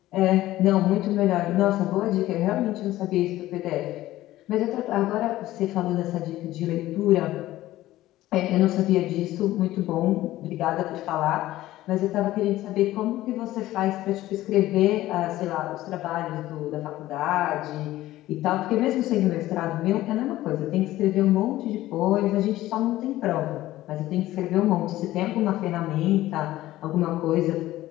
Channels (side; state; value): right; quieter; 15.6 dB